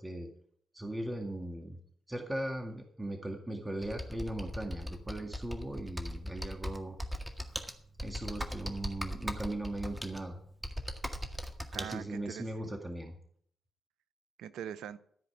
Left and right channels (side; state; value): both; normal; correlation 0.92